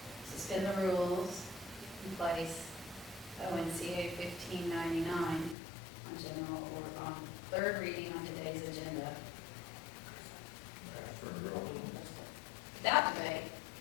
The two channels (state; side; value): drops out; right; at 5.6 s